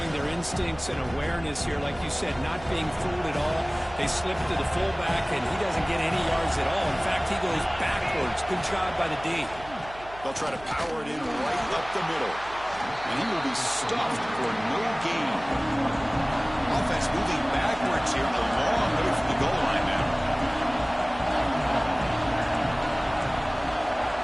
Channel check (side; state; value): right; noise; hum, 18 dB below the sound